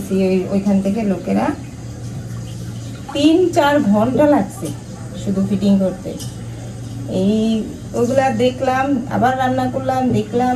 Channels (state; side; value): identical; both; correlation 1.00